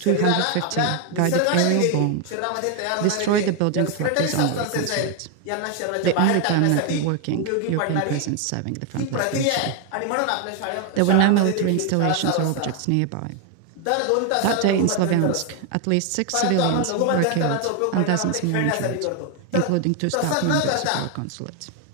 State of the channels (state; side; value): different; both; correlation 0.01